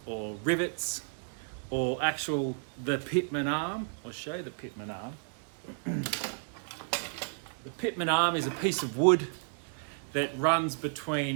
or rivets or the pitman arm. I'll show you the pitman arm. The pitman arm is a piece of wood that runs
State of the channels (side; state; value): left; silent; digital silence